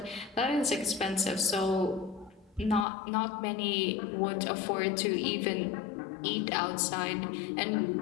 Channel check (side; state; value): right; drops out; at 2.9 s